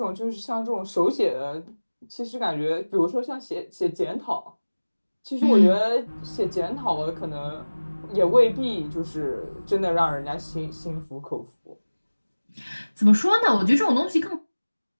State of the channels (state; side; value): inverted; both; correlation -1.00